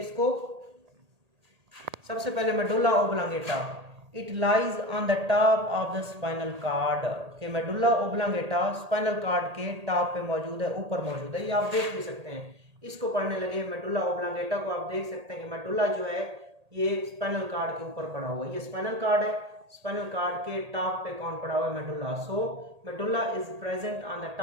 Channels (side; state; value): left; late; 1.8 ms